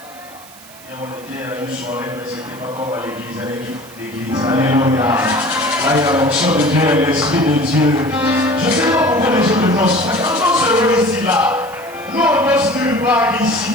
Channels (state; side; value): noise; right; hiss, 21 dB below the sound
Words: Et on était à une soirée, mais ce n'était pas comme à l'église. Alléluia. Là, il y a l'onction de Dieu et l'Esprit de Dieu. Je ne sais pas pourquoi les gens ne dansent pas. Quand on se réunit ici, là, nous on danse nulle part